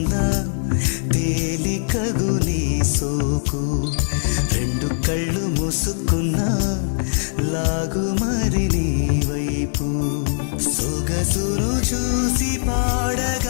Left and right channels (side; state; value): right; silent; digital silence